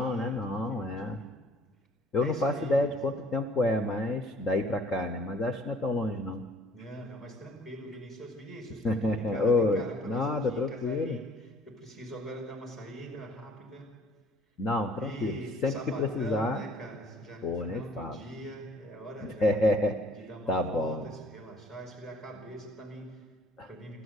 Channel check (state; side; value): normal; both; correlation 0.56